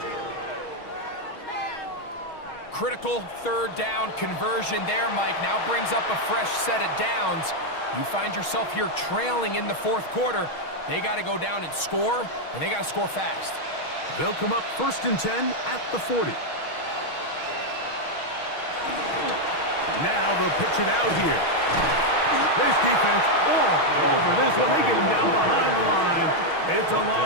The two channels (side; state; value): right; late; 6.3 ms